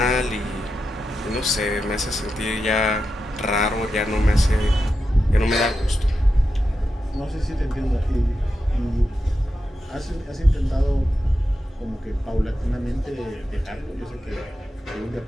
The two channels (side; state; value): both; normal; correlation 0.89